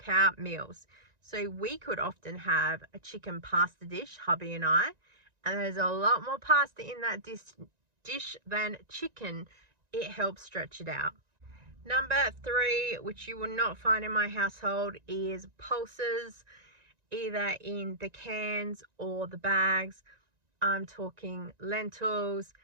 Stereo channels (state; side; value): late; left; 1.9 ms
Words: out meals. So we could often have a chicken pasta dish, hubby and I, and there's a lot more pasta in that dish than chicken. It helps stretch it out. Number 3, which you will not find in my household, is pulses, either in the cans or the bags. I'm talking lentils,